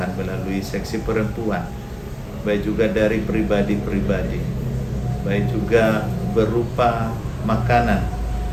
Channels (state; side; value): identical; both; correlation 1.00